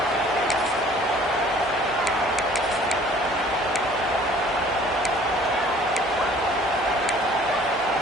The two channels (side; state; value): both; normal; correlation 0.53